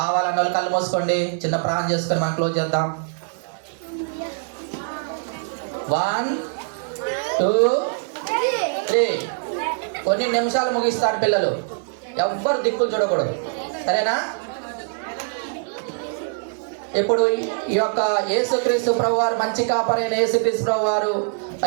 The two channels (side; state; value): left; silent; digital silence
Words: వాళ్ళు కళ్ళు మూసుకోండి, చిన్న ప్రాణం చేసుకొని మనం క్లోజ్ చేద్దాం. 1 2 3. కొన్ని నిమిషాలు ముగిస్తారు పిల్లలు, ఎవ్వరు దిక్కులు చూడకూడదు, సరేనా? ఇప్పుడు ఈ యొక్క యేసుక్రీస్తు ప్రభువారు, మంచి కాపరైన యేసుక్రీస్తు ప్రభువారు,